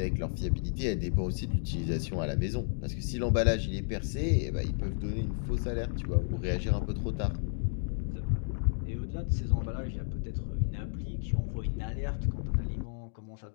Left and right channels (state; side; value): silent; right; digital silence